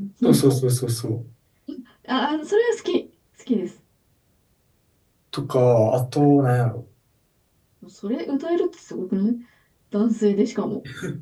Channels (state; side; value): identical; both; correlation 1.00